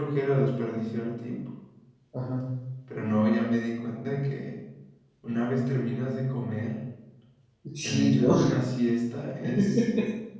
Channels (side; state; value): both; identical; correlation 1.00